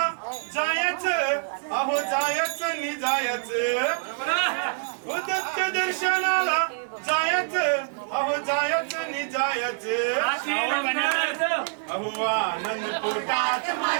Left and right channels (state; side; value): silent; left; digital silence